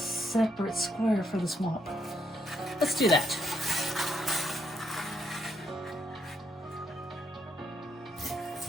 square for the swamp. Let's do that.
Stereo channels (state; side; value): normal; both; correlation 0.74